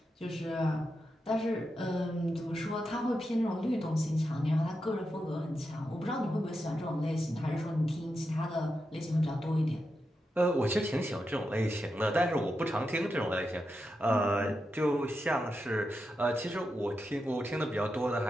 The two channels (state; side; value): normal; both; correlation 0.87